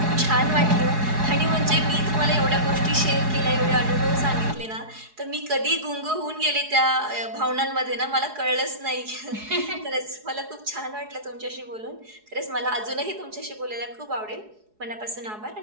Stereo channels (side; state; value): left; late; 4.7 ms